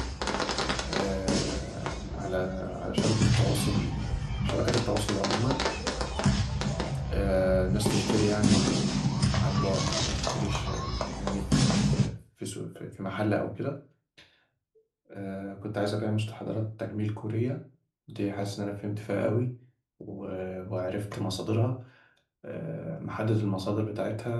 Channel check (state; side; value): identical; both; correlation 1.00